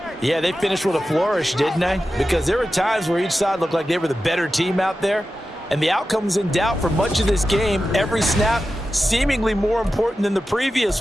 Yeah, they finished with a flourish, didn't they? Because there were times where each side looked like they were the better team out there, and the outcome was in doubt for much of this game. Every snap seemingly more important than the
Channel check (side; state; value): both; normal; correlation 0.92